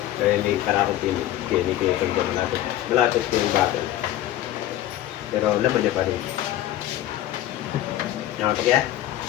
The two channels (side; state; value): right; quieter; 13.4 dB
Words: Kaya may karakot yun. Kaya hindi ko yung malapit. Malapit ko yung bakit. Pero laman niya pa rin. Namatok yan?